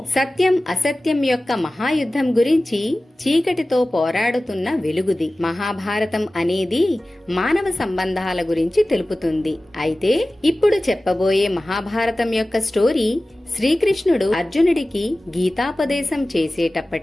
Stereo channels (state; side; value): normal; both; correlation 0.97